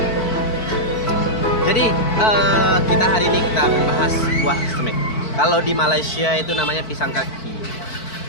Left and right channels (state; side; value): late; right; 4.5 ms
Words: Jadi kita hari ini kita membahas buah kesemek. Kalau di Malaysia itu namanya pisang kaki.